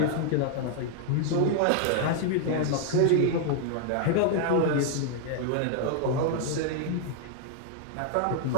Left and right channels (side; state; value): both; different; correlation 0.00